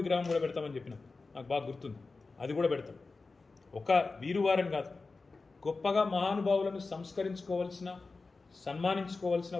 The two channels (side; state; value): right; quieter; 3.9 dB